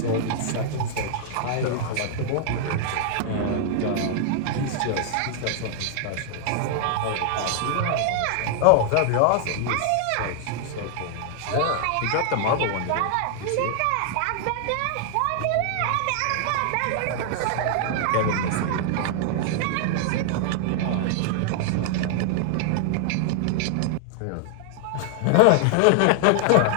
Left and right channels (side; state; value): both; different; correlation 0.00